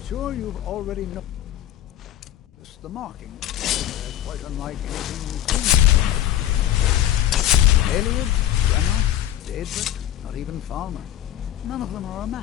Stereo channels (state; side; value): quieter; right; 12.1 dB